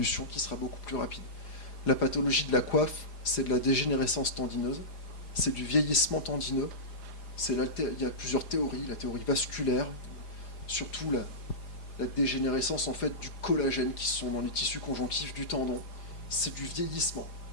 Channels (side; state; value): right; late; 4.9 ms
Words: qui sera beaucoup plus rapide. La pathologie de la coiffe, c'est de la dégénérescence tendineuse, c'est du vieillissement tendineux, il y a plusieurs théories, la théorie vasculaire, surtout la dégénérescence en fait du collagène qui sont dans les tissus conjonctifs du tendon, c'est du vieillissement.